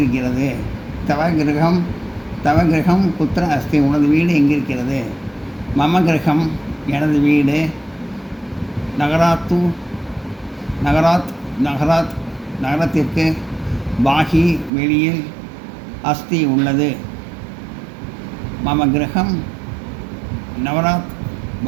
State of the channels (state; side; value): drops out; left; at 14.7 s